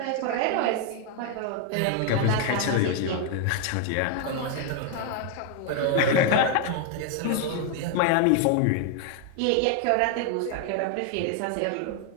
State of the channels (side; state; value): both; different; correlation 0.01